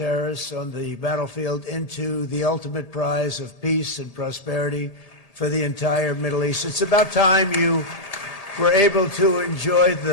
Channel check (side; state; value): right; late; 1.8 ms